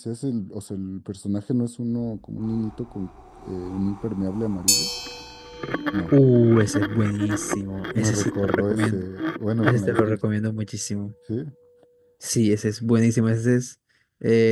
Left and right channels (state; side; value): identical; both; correlation 1.00